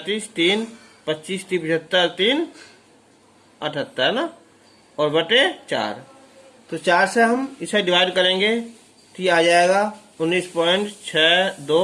3 25 30 75, 3 78 है ना, और बटे 4। तो 4 से हम इसे डिवाइड करेंगे तो ये आ जाएगा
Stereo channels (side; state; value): both; identical; correlation 1.00